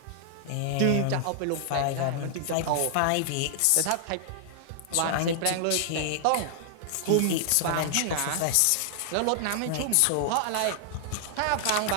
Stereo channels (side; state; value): both; different; correlation -0.01